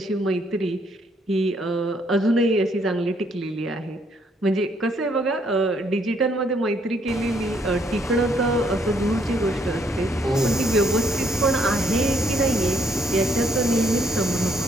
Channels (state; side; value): normal; both; correlation 0.69